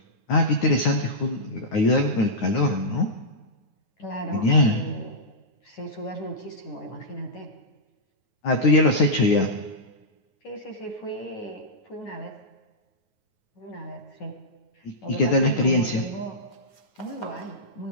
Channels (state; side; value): late; right; 9.4 ms